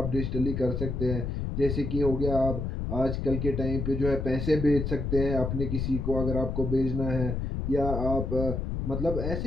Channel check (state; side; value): noise; left; rumble, 2 dB below the sound